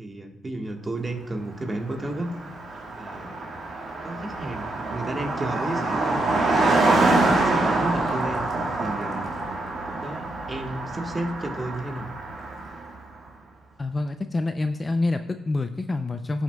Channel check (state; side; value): normal; both; correlation 0.82